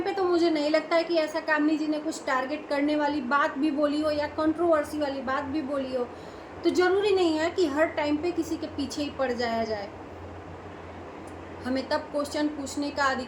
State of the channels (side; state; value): both; identical; correlation 1.00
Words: पे तो मुझे नहीं लगता है कि ऐसा कामिनी जी ने कुछ टारगेट करने वाली बात भी बोली हो या कंट्रोवर्सी वाली बात भी बोली हो। तो जरूरी नहीं है कि हर टाइम पे किसी के पीछे ही पड़ जाया जाए। हमें तब क्वेश्चन पूछने का